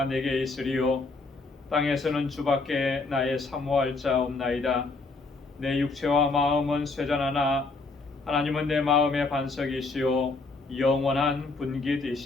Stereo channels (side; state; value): right; quieter; 3.7 dB